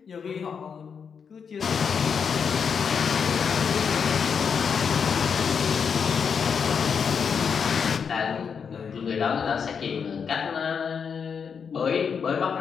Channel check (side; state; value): right; quieter; 6.5 dB